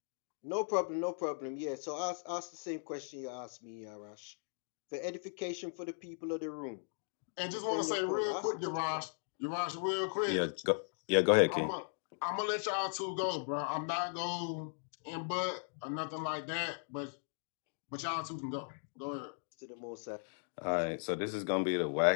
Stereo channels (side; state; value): right; silent; digital silence